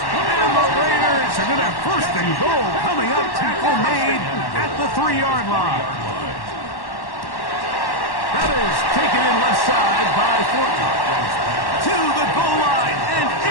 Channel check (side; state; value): right; late; 1.1 ms